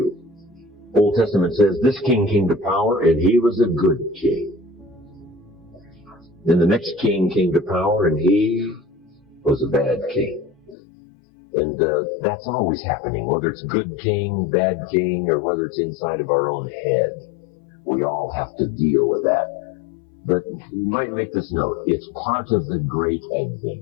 Old Testament says this king came to power and he was a good king. Then the next king came to power and he was a bad king. And that's always happening, whether it's good king, bad king, or whether it's inside of our own head. We all have to deal with that. But you might make this note, it's part of the great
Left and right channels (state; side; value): drops out; right; at 10.8 s